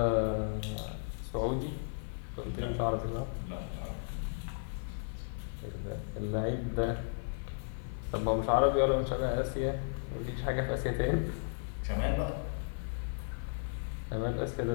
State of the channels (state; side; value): silent; right; 55 dB below the other